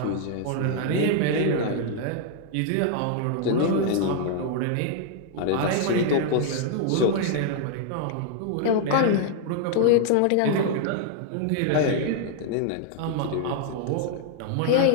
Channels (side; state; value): both; different; correlation 0.00